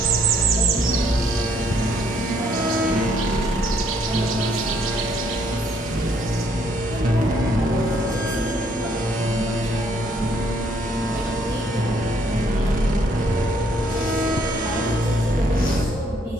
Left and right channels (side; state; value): both; normal; correlation 0.67